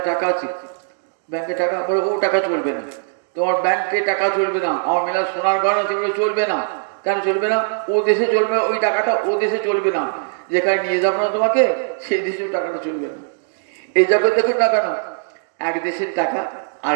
টাকা আছে, ব্যাংকে টাকা, বলে ও টাকা চলবে না, তোমার ব্যাংকে টাকা চলবে না, আমার মেলা সোনার গয়না সেগুলো চলবে না। কেন চলবে না? ও দেশে চলবে, ওই টাকাটা ও দেশে চলবে না, যেখানে নিয়ে যাবো না তোমাকে সেই দেশেও টাকাটা চলবে না। এই জগৎ দেখুন না কেন, এক দেশের টাকা আর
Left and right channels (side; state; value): left; silent; digital silence